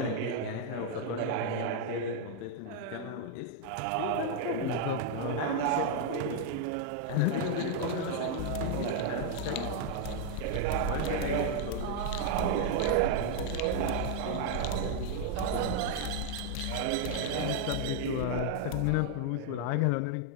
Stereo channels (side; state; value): both; different; correlation 0.00